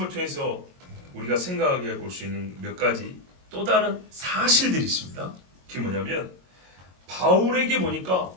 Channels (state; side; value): late; left; 22 ms